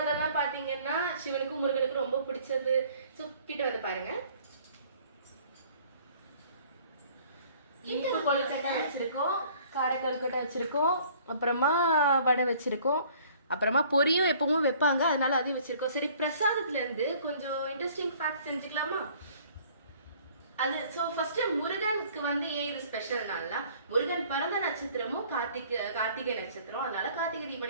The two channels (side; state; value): both; inverted; correlation -0.55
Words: பாத்தீங்கன்னா சிவனுக்கும் முருகனுக்கும் ரொம்ப பிடிச்சது. சோ கிட்ட வந்து பாருங்க. இனிப்பு கொழுக்கட்டை வச்சிருக்கோம், கார கொழுக்கட்டை வச்சிருக்கோம், அப்புறமா வடை வச்சிருக்கோம், அப்புறமா பொரியும் எப்பவும் வைப்பாங்க, அதனால அதையும் வச்சிருக்கோம். சரி, பிரசாதத்துல இருந்து கொஞ்சம் இன்ட்ரெஸ்டிங் ஃபேக்ட் செஞ்சுக்கலாமா? அது ஃபர்ஸ்ட் முருகனுக்கு வந்து ஏன் இது ஸ்பெஷல் நாள்னா, முருகன் பிறந்த நட்சத்திரமும் கார்த்திகை நட்சத்திரம், அதனால கார்த்திகை